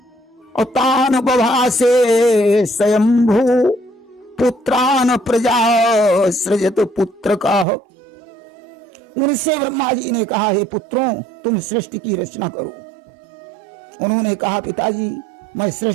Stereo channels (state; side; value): drops out; left; at 7.7 s